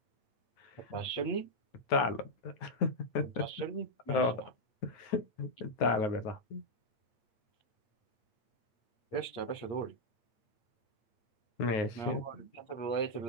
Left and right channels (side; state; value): right; late; 8.6 ms